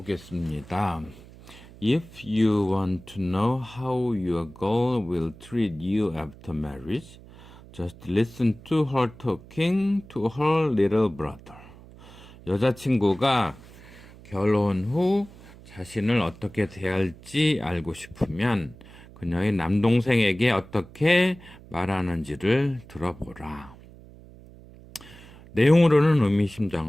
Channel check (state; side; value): noise; right; hum, 20 dB below the sound